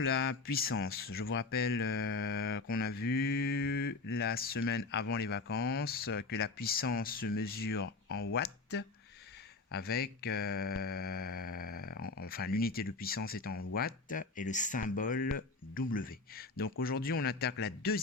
puissance. Je vous rappelle qu'on a vu la semaine avant les vacances que la puissance se mesure en watts avec, enfin l'unité de puissance est en watts et le symbole W. Donc aujourd'hui on attaque la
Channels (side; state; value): right; quieter; 3.8 dB